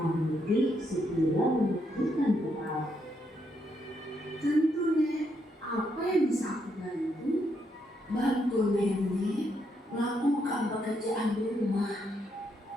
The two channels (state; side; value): normal; both; correlation 0.77